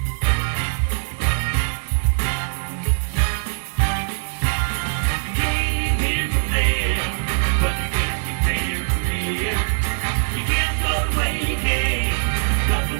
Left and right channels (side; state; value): left; silent; digital silence